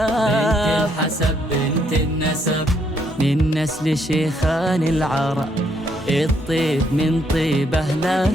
بنت الحسب بنت النسب، من نسل شيخان العرب. الطيب من طيب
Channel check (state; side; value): normal; both; correlation 0.72